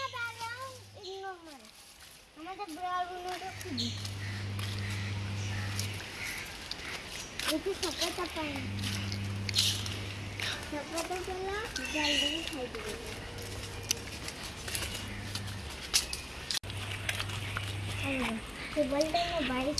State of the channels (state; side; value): identical; both; correlation 1.00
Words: দাঁড়াও ইগনোর মার আমাদের ব্রাউনটা খুঁজি একটু সকালটা পাই সকালটা চলা জলদি খাই দেবো বলতে না